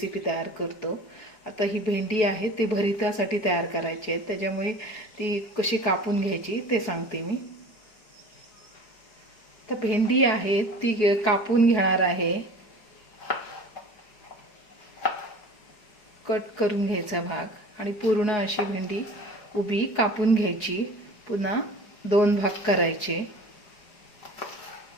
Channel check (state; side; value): late; right; 4.7 ms